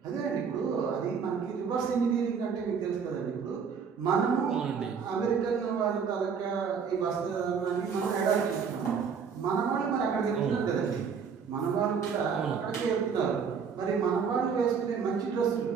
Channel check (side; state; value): left; quieter; 6.4 dB